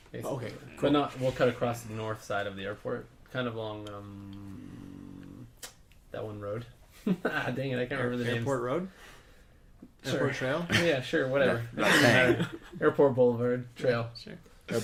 Basically. Okay, But not. We'll cut across the north side of the airport, kind of along that one road. Dang it, I can't remember the name. Airport Road? Sure. Airport Trail? Yeah, sure, whatever. Doesn't matter. Airport Boulevard Trail. Sure.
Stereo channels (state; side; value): identical; both; correlation 1.00